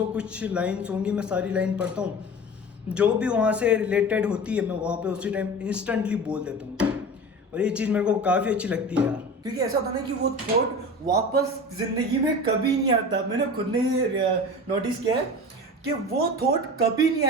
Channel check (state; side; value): normal; both; correlation 0.34